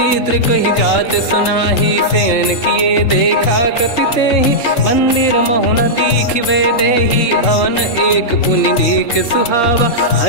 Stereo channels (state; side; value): late; right; 3.7 ms